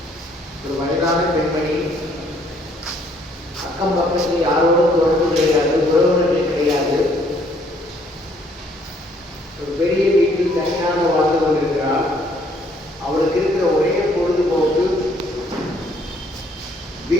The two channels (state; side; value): normal; both; correlation 0.64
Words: ஒரு வயதான பெண்மணி, அக்கம் பக்கத்தில் யாரோடும் தொடர்பு கிடையாது, உறவினர்கள் கிடையாது, ஒரு பெரிய வீட்டில் தனியாக வாழ்ந்து கொண்டிருக்கிறார். அவளுக்கு இருக்கிற ஒரே பொழுதுபோக்கு